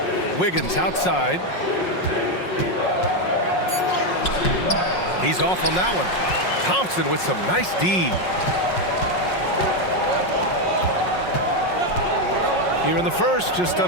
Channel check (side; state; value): right; late; 5.5 ms